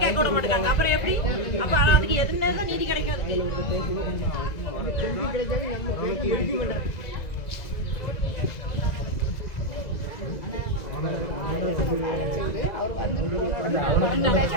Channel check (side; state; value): right; late; 2.0 ms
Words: கேட்க விட மாட்டாங்க. அப்புறம் எப்படி? அப்ப அதுக்கு எதுன்னு தான் நீதி கிடைக்கும்?